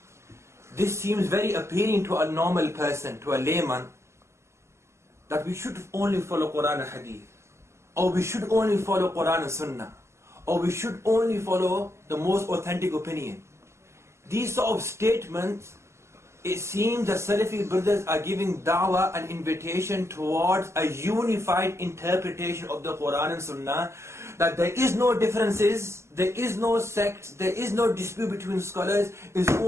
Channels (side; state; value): left; late; 0.13 ms